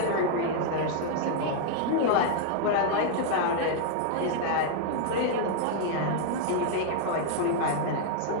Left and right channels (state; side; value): different; both; correlation -0.01